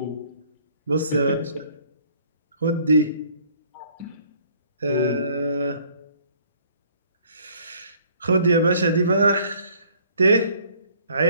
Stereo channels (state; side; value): inverted; both; correlation -0.59